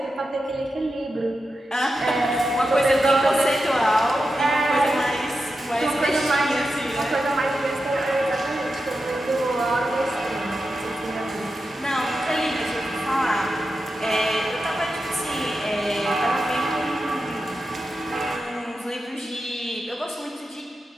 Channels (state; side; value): normal; both; correlation 0.90